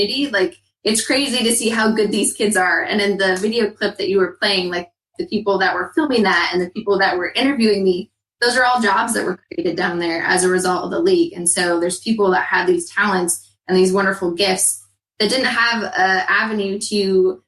like, it's crazy to see how good these kids are. And in the video clip that you were playing, like the people that were filming that and the people that were interviewing me, those are all jobs that were created down there as a result of the league. And so there's people that had these talents and these wonderful gifts that didn't have an avenue to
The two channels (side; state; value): both; identical; correlation 1.00